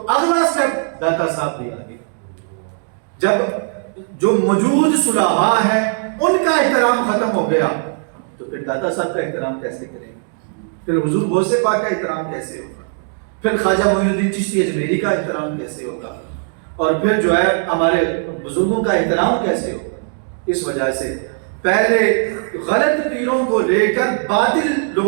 اگلا سٹیپ داتا صاحب بھی آ گئے۔ جب جو موجود صلحاء ہیں ان کا احترام ختم ہو گیا تو پھر داتا صاحب کا احترام کیسے کریں گے؟ پھر حضور غوث پاک کا احترام کیسے ہوگا؟ پھر خواجہ معین الدین چشتی اجمیری کا احترام کیسے ہوگا؟ اور پھر جو ہے ہمارے بزرگوں کا احترام کیسے ہوگا؟ اس وجہ سے پہلے غلط پیروں کو لے کر، باطل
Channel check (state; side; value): silent; left; 59 dB below the other